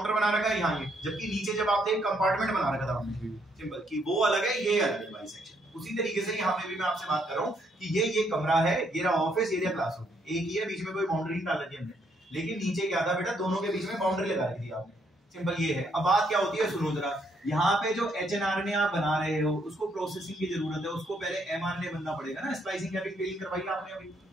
बना रखा है, यहाँ ये, जबकि नीचे जब आप थे कंपार्टमेंट बना रखा था हमने, सिंपल, कि वो अलग है ये अलग है वाली सेक्शन। उसी तरीके से यहाँ पे भी मैं आपसे बात कर रहा हूँ कि ये कमरा है, ये रहा ऑफिस, ये रहा क्लासरूम, एक ही है, बीच में कोई बाउंड्री नहीं डाल रखी हमने, लेकिन नीचे क्या था बेटा, दोनों के बीच में बाउंड्री लगा रखी थी आपने, सिंपल ये है। अब बात क्या होती है, सुनो जरा, यहाँ पे जो एचएनआरएनए आप बना रहे हो उसको प्रोसेसिंग की जरूरत है, उसको पहले एमआरएनए बनना पड़ेगा ना, स्प्लाइसिंग कैपिंग टेलिंग करवाई आपने अभी,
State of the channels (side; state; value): both; normal; correlation 0.72